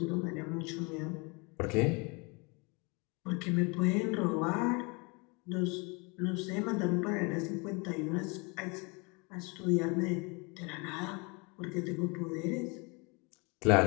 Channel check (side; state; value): right; quieter; 29.9 dB